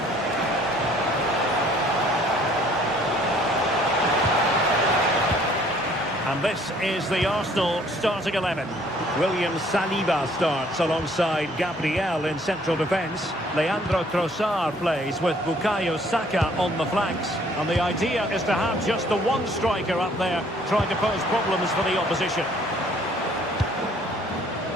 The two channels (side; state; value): both; normal; correlation 0.59